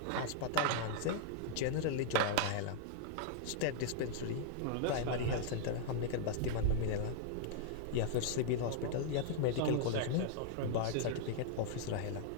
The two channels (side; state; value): both; different; correlation -0.01